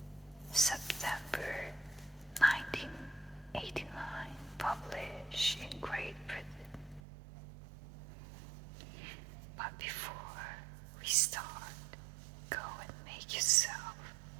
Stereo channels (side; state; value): left; drops out; at 7.0 s